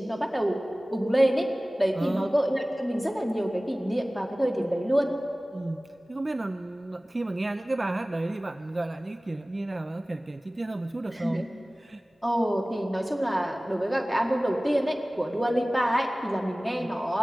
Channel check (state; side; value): normal; both; correlation 0.98